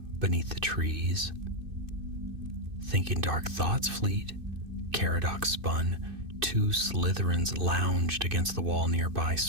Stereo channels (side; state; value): left; late; 2.6 ms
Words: beneath the trees. Thinking dark thoughts fleet, Caradoc spun. Two Slytherins lounged against the wall nearby,